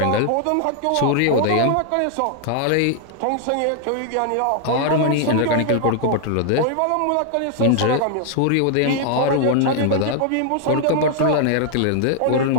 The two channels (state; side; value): different; both; correlation 0.00